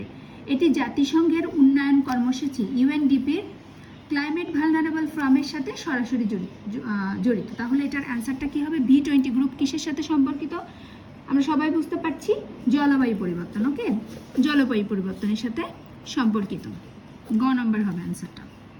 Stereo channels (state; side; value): identical; both; correlation 1.00